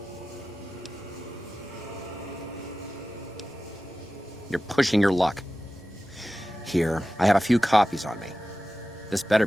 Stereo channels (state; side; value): normal; both; correlation 0.95